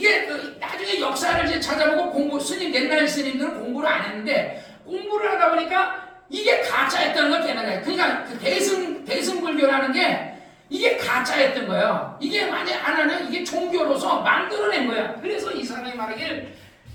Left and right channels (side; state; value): both; identical; correlation 1.00